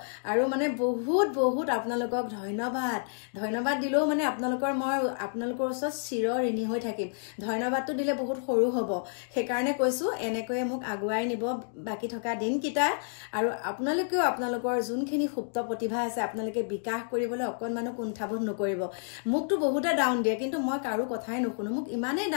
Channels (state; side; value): silent; right; digital silence